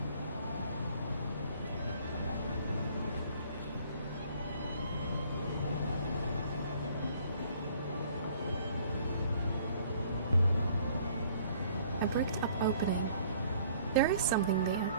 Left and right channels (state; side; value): inverted; both; correlation -0.58